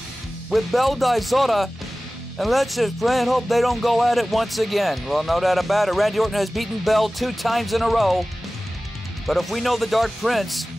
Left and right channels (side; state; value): both; normal; correlation 0.97